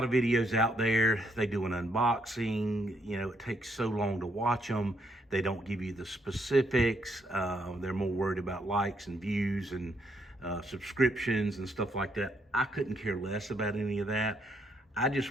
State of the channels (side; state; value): both; normal; correlation 0.74